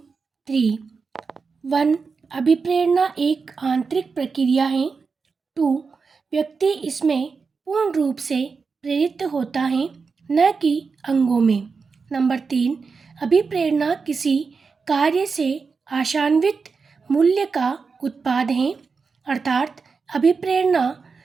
3। 1, अभिप्रेरणा एक आंतरिक प्रक्रिया है। 2, व्यक्ति इसमें पूर्ण रूप से प्रेरित होता है, न कि अंगों में। नंबर 3, अभिप्रेरणा किसी कार्य से आशान्वित मूल्य का उत्पाद है, अर्थात अभिप्रेरणा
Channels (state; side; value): quieter; left; 4.9 dB